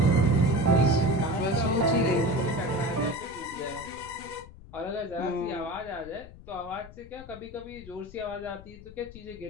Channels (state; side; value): noise; left; rumble, 18 dB below the sound